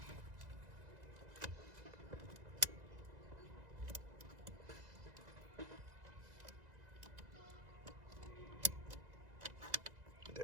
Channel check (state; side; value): late; left; 2.0 ms